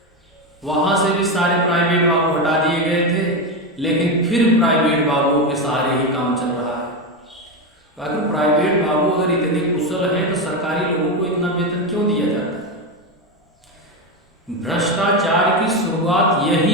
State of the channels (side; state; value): both; normal; correlation 0.13